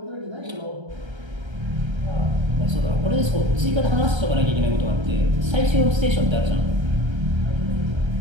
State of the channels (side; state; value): left; late; 1.3 ms